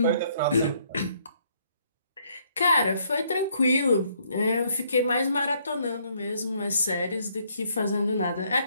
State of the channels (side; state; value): both; inverted; correlation -0.68